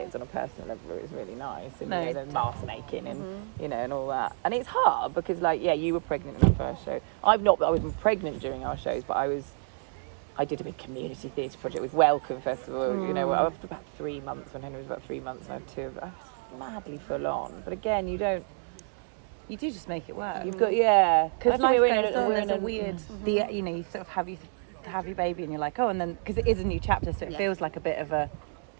on a personal level, it was really nice. And you know, the mask making and you know, and all that. And it's hard because, like, you were pregnant in the first show. I was pregnant during our shows, but I did a big community theatre project with Welcome Festival. You know, after about 3 months, when Henry was about 3 months, I had 2 of us, madly full on. But again, you do just make it work. You've got because life goes on. There's a weird, you know, you sort of have your baby, and you're like, oh, and then because it is a new chapter, so it feels like a bit of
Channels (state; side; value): silent; left; 58 dB below the other